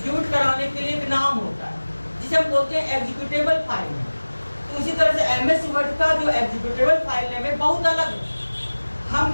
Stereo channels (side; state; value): both; inverted; correlation -1.00